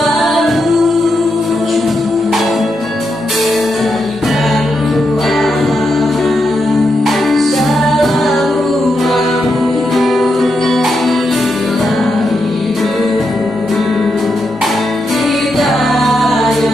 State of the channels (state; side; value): normal; both; correlation 0.84